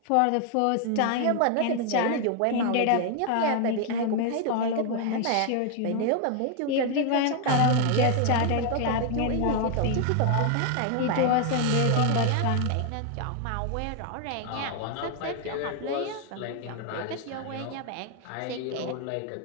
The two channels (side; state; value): both; different; correlation 0.00